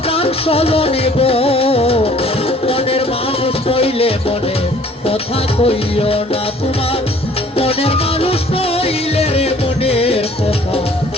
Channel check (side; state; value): both; normal; correlation 0.55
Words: প্রাণ স্বজনে গো, মনের মানুষ নইলে মনে কথা কইও না। তোমার মনের মানুষ নইলে রে মনের কথা